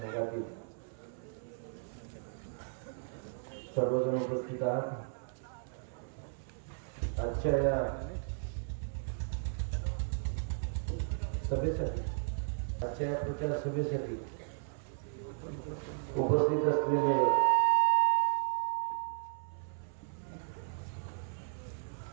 सर्वजण उपस्थित आहात। आजच्या या सभेसाठी आजच्या या प्रचार सभेसाठी उपस्थित असलेले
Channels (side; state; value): left; silent; 54 dB below the other